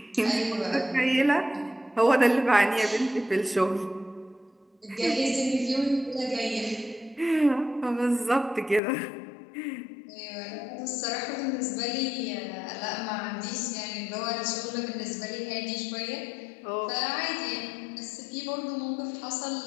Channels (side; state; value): right; drops out; at 8.8 s